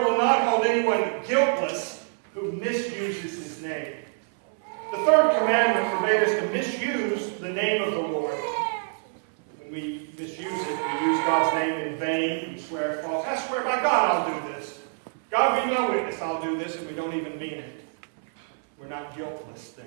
not hold anyone guiltless who misuses his name. The third commandment forbade us to misuse the name of the Lord. When we misuse it, we use God's name in vain, we swear false. I swear by God I'll do this. God be my witness, I'll I'll do this, and we don't even mean it, we're not guiltless then.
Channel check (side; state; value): left; silent; 60 dB below the other